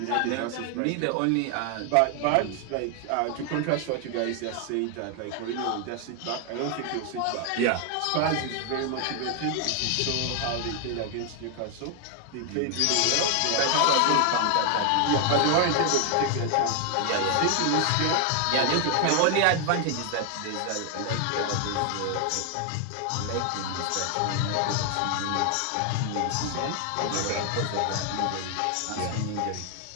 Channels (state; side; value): different; both; correlation 0.00